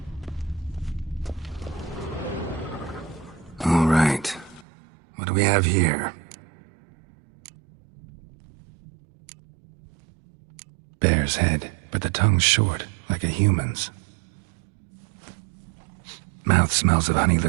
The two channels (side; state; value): left; drops out; at 4.7 s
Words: All right. What do we have here? Bear's head, but the tongue's short, like a human's. Mouth smells of honey